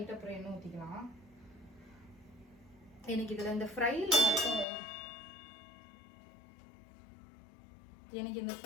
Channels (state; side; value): drops out; right; at 4.7 s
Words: அப்புறம் எண்ணெய் ஊற்றிக்கலாம். எனக்கு இதில் இந்த ஃப்ரையில்